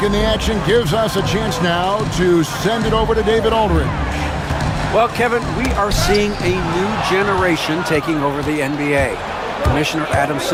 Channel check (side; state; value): both; identical; correlation 1.00